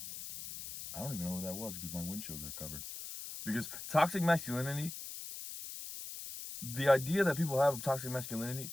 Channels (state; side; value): noise; left; hiss, 9 dB below the sound